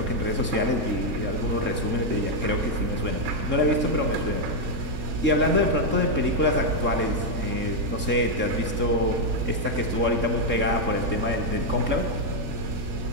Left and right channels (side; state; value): left; late; 3.7 ms